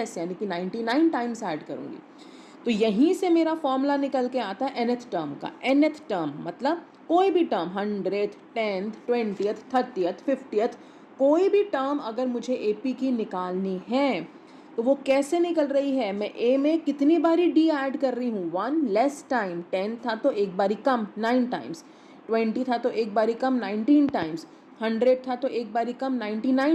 यानी कि 99 टाइम्स ऐड करूँगी। तो यहीं से मेरा फॉर्मूला निकल के आता है nth टर्म का। nth टर्म मतलब कोई भी term 100th 10th 20th 30th 50th कोई भी टर्म अगर मुझे एपी की निकालनी है तो वो कैसे निकल रही है, मैं ए में कितनी बारी डी ऐड कर रही हूँ, 1 लेस टाइम, 10 था तो एक बारी कम 9 टाइम्स, 20 था तो एक बारी कम 19 टाइम्स, 100 था तो एक बारी कम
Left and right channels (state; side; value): identical; both; correlation 1.00